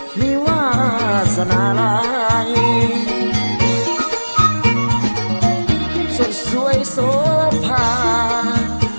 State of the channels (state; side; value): inverted; both; correlation -1.00